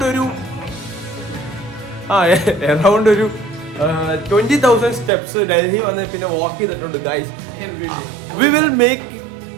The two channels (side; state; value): left; drops out; at 5.1 s